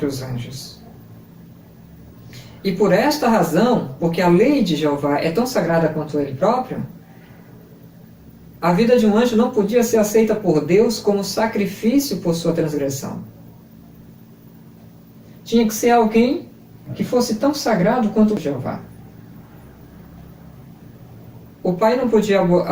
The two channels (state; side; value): identical; both; correlation 1.00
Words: anjos. E por esta razão, porque a lei de Jeová é tão sagrada quanto ele próprio, a vida de um anjo não podia ser aceita por Deus como sacrifício por sua transgressão. Tinha que ser alguém que fosse tão sagrado quanto Jeová. O pai não podia